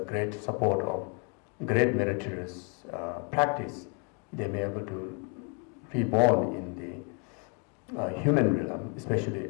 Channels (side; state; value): right; quieter; 37.3 dB